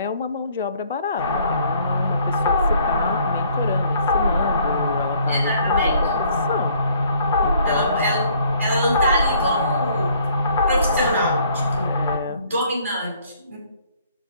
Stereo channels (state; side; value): inverted; both; correlation -0.61